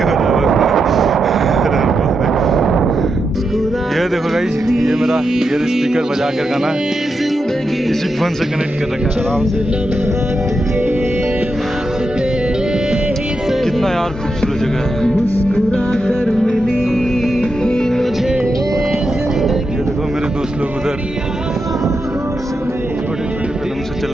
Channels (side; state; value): both; normal; correlation 0.86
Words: ये देखो गाइस, ये मेरा ईयर स्पीकर बजा कर गाना इसी फोन से कनेक्ट कर रखा है आराम से। कितना यार खूबसूरत जगह है। ये देखो मेरे दोस्त लोग उधर छोटे छोटे कदम से चल